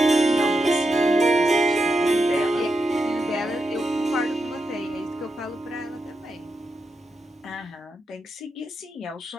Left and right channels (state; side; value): normal; both; correlation 0.86